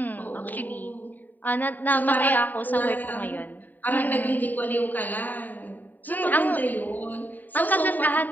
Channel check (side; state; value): right; late; 0.087 ms